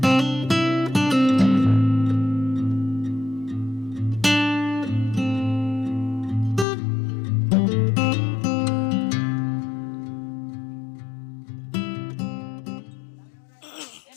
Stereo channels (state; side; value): drops out; right; at 6.7 s